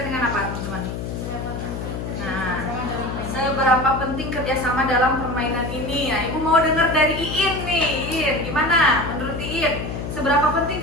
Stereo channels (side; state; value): left; noise; hum, 6 dB below the sound